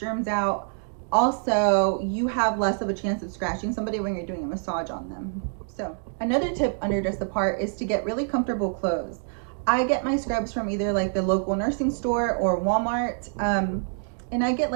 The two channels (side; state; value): left; silent; digital silence